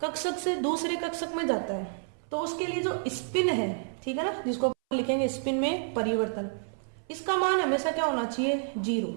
कक्षक से दूसरे कक्षक में जाता है, तो उसके लिए जो स्पिन है, ठीक है ना, जिसको लिखेंगे स्पिन में परिवर्तन, इसका मान हमेशा क्या होना चाहिए, 0।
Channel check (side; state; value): left; silent; 58 dB below the other